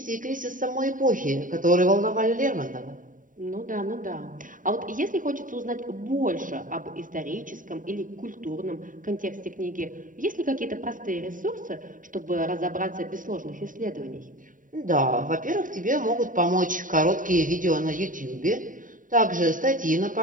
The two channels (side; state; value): left; late; 0.39 ms